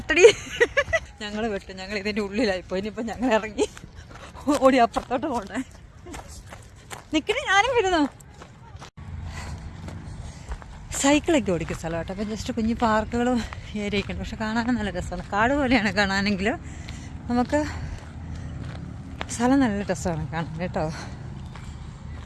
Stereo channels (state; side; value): identical; both; correlation 1.00